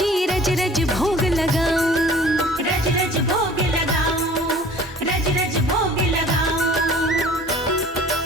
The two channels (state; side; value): normal; both; correlation 0.49